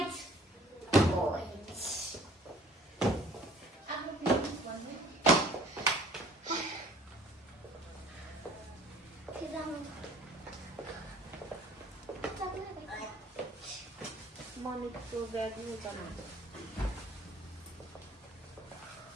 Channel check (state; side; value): normal; both; correlation 0.52